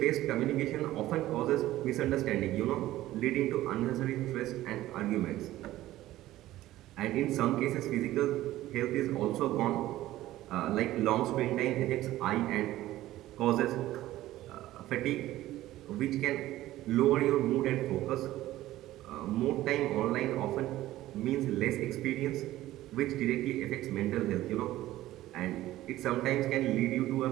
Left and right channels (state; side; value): quieter; left; 15.3 dB